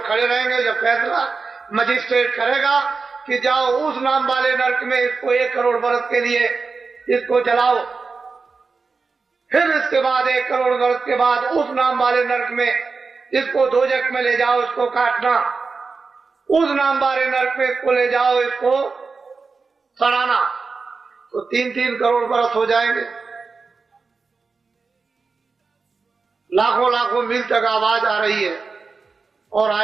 खड़े रहेंगे जब फैसला मजिस्ट्रेट करेगा कि जाओ उस नाम वाले नरक में इसको 1 करोड़ बरस के लिए इसको जलाओ, फिर इसके बाद 1 करोड़ बरस के बाद उस नाम वाले नरक में इसको दोजख में ले जाओ, इसको काटना, उस नाम वाले नरक में इसको ले जाओ, इसको सड़ाना, तो 3-3 करोड़ बरस हो जाएंगे। लाखों लाखों मील तक आवाज आ रही है और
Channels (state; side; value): quieter; left; 4.5 dB